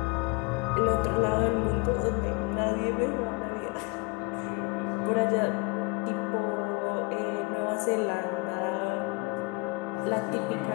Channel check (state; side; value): quieter; right; 28.3 dB